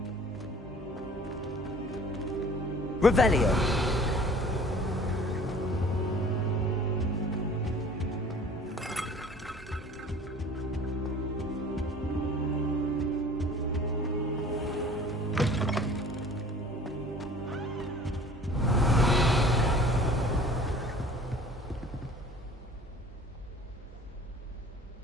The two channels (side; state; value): both; normal; correlation 0.48